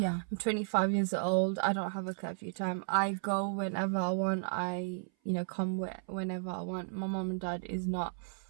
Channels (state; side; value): silent; left; 55 dB below the other